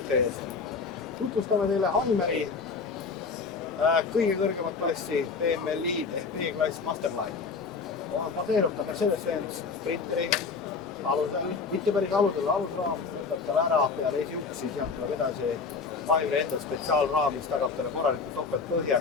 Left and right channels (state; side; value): quieter; right; 4.9 dB